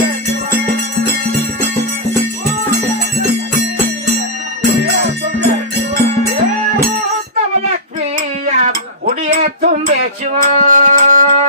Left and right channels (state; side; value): normal; both; correlation -0.15